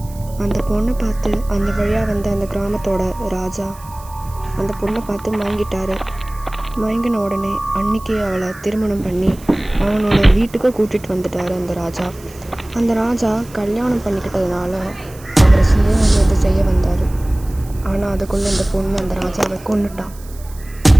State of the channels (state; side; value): noise; right; hiss, 22 dB below the sound